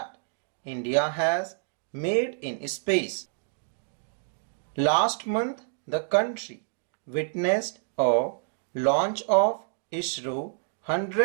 India has made in space. Last month, the country witnessed a launch of ISRO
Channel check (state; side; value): silent; left; digital silence